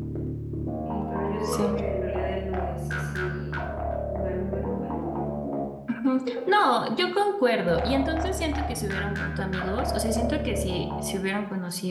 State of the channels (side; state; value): both; identical; correlation 1.00